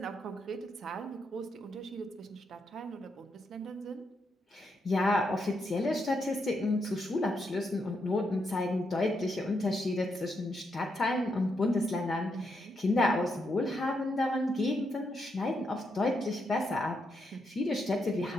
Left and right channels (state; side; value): normal; both; correlation 0.81